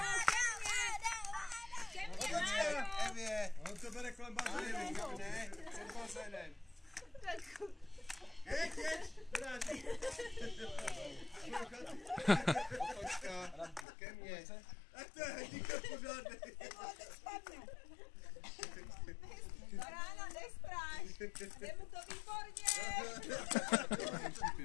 Evě, on to bere kolem bazény, ne? Před bazénem. Jeď, dráží. Otočka, ke mně. Ach to je hrdíka pořádný. Ráno nestráš, jde mu to výborně.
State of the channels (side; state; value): right; drops out; at 13.9 s